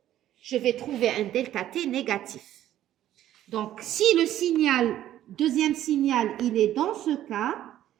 je vais trouver un delta T négatif. Donc, si le signal, deuxième signal, il est dans ce cas,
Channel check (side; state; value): left; quieter; 12.5 dB